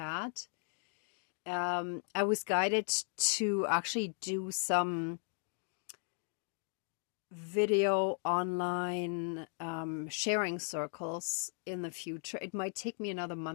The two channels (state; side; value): silent; right; 53 dB below the other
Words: I was guided to actually do some video online sharing circles in the future. It might take me another